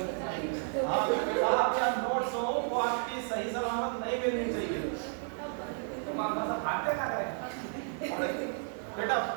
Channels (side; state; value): left; silent; 56 dB below the other